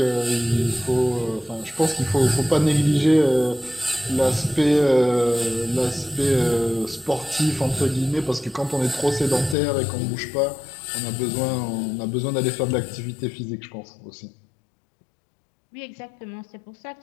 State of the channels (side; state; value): right; drops out; at 9.6 s